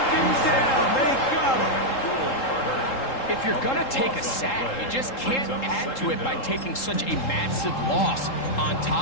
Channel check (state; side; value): late; right; 3.7 ms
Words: down. They got him. If you're going to take a sack, you just can't add to it by taking such a massive loss on